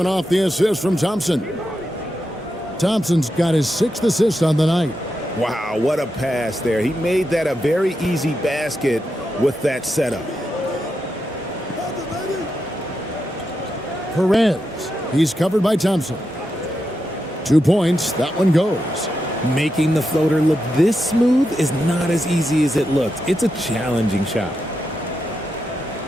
off the assist from Thompson. Thompson's got his 6th assist on the night. Wow, what a pass there. He made that a very easy basket with that setup. Perez, he's covered by Thompson. 2 points, that one goes. Making the floater look this smooth is not as easy as it looks. It's a challenging shot.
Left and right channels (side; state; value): both; normal; correlation 0.86